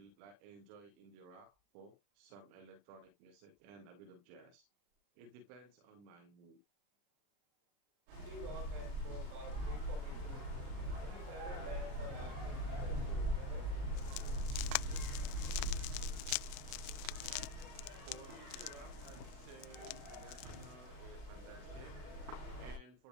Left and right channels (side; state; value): left; late; 39 ms